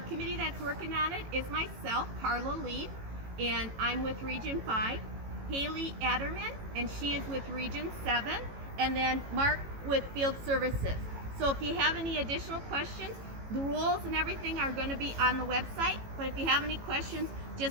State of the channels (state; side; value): late; left; 18 ms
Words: committee that's working on it is myself, Carla Lee, and I'm with Region 5, Haley Adderman, and she is with Region 7, and then Mark with Field Services. So if you have any additional questions, the rules and everything are going to be on the website, but if you have any questions,